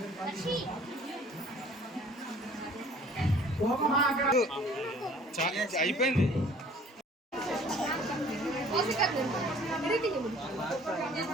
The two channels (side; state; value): both; normal; correlation 0.53